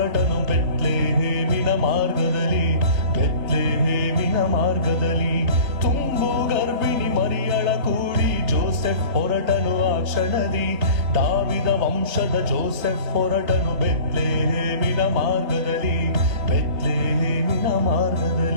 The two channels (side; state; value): left; late; 3.8 ms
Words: ಬೆತ್ಲೆಹೇಮಿನ ಮಾರ್ಗದಲ್ಲಿ, ಬೆತ್ಲೆಹೇಮಿನ ಮಾರ್ಗದಲ್ಲಿ. ತುಂಬು ಗರ್ಭಿಣಿ ಮರಿಯಳ ಕೂಡಿ ಜೋಸೆಫ್ ಹೊರಟನು ಆ ಕ್ಷಣದಿ. ದಾವಿದ ವಂಶದ ಜೋಸೆಫ್ ಹೊರಟನು ಬೆತ್ಲೆಹೇಮಿನ ಮಾರ್ಗದಲ್ಲಿ, ಬೆತ್ಲೆಹೇಮಿನ